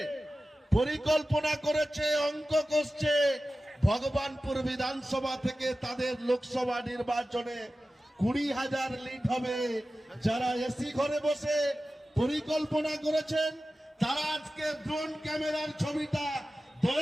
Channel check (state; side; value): normal; both; correlation 0.95